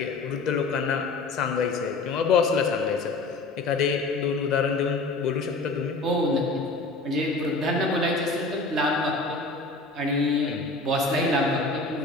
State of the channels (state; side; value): quieter; right; 3.3 dB